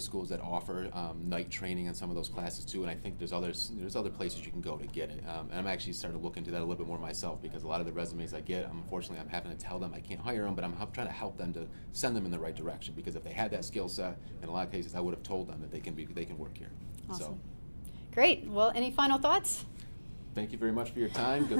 that offer night training on some of those classes too, and I think there's other places you can go to get it. And I'm actually starting to look into that a little bit more myself, because a lot of the resumes I get, unfortunately, I'm having to tell them I can't hire them, but I'm trying to help them to send them in the right direction, because if they had that skill set, in a lot of cases, I would have told them that they can work here. Awesome. So, Great. Well, any final thoughts? thank you very much for your time.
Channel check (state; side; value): inverted; both; correlation -1.00